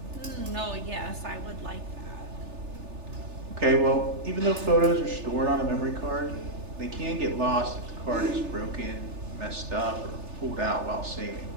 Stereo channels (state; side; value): late; left; 3.4 ms